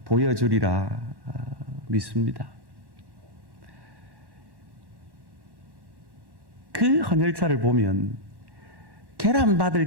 보여주리라 믿습니다. 그 헌혈차를 보면 계란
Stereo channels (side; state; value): left; late; 1.1 ms